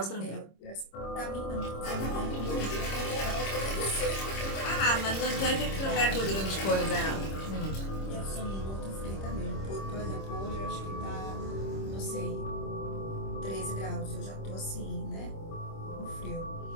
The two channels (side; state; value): right; late; 26 ms